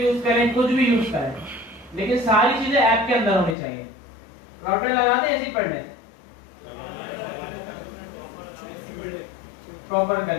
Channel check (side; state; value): right; drops out; at 3.6 s